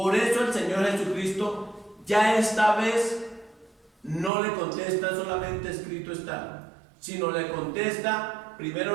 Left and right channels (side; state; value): left; drops out; at 4.3 s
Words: eso el Señor Jesucristo ya esta vez no le contesta solamente escrito está, sino le contesta,